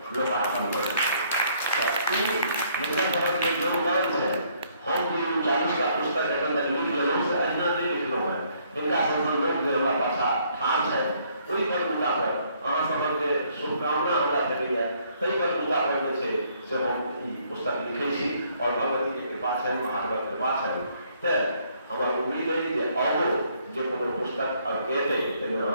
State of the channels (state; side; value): inverted; both; correlation -0.66